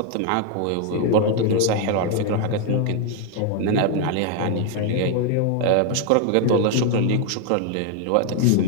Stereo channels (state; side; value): different; both; correlation 0.01